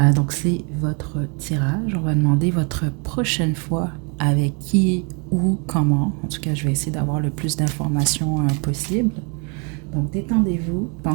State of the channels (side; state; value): left; quieter; 34.5 dB